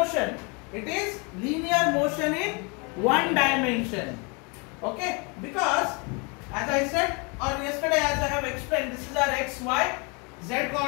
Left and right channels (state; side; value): quieter; right; 31.6 dB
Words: it is linear motion in one dimension. Okay? Because as I said, or yesterday as I have explained, this is our x, y, z